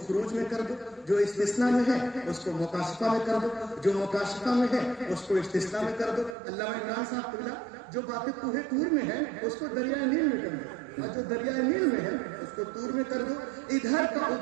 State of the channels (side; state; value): left; drops out; at 6.4 s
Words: خروج میں کر دو, جو استثناء میں ہے اس کو مکاشفہ میں کر دو, جو مکاشفہ میں ہے اس کو استثناء میں کر دو. علامہ عمران صاحب قبلہ جو باتیں کوہ طور میں ہے اس کو دریائے نیل میں کر دو, اور جو دریائے نیل میں ہے اس کو طور میں کر دو. ادھر کا